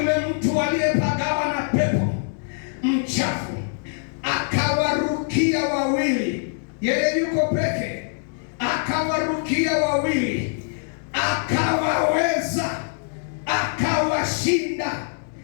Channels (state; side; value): silent; right; digital silence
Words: mtu aliyepagawa na pepo mchafu akawarukia wawili, yeye yuko peke, akawarukia wawili, akawaweza, akawashinda,